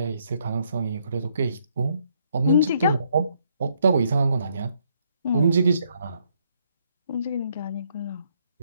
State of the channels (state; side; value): inverted; both; correlation -0.71